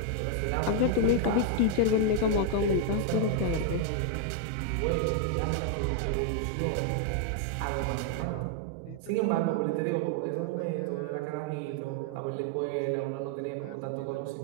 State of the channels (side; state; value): both; different; correlation 0.00